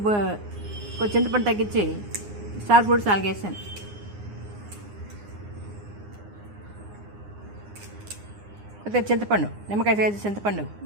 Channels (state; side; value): late; left; 9.7 ms